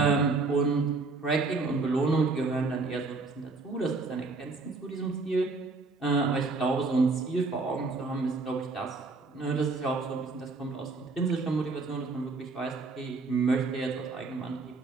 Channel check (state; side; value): quieter; left; 3.8 dB